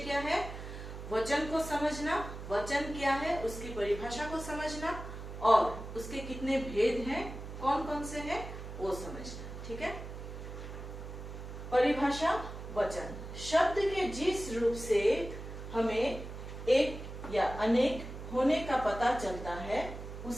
है? वचन को समझना, वचन क्या है उसकी परिभाषा को समझना और उसके कितने भेद हैं, कौन कौन से हैं, वो समझना। ठीक है, परिभाषा वचन शब्द के जिस रूप से हमें एक या अनेक होने का पता चलता है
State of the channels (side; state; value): right; noise; hum, 10 dB below the sound